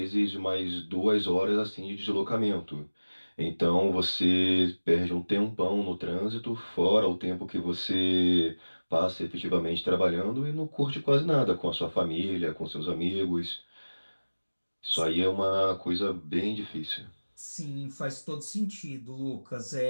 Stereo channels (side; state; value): both; inverted; correlation -1.00